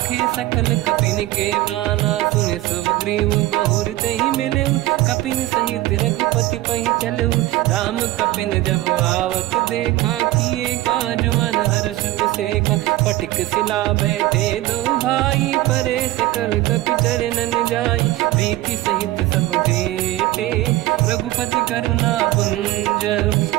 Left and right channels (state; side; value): quieter; left; 16.7 dB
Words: सकल कपिन के प्राणा, सुने सुग्रीव बहुर तहि मिलेऊ, कपिन सहित रघुपति पहि चलेऊ, राम कपिन जब आवत देखा, किए काज मन हर्ष बिसेखा, पटिक सिला बैठे दो भाई, परे सकल कपि चरणन जाई, प्रीति सहित सब भेटे, रघुपति करुणा पुंज,